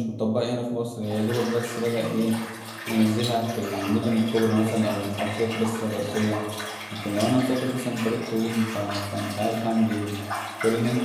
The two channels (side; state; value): both; identical; correlation 1.00